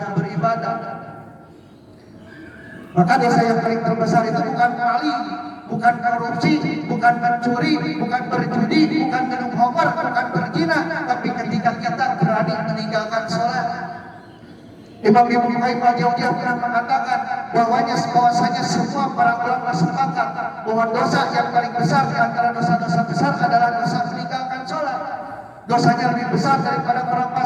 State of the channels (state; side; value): identical; both; correlation 1.00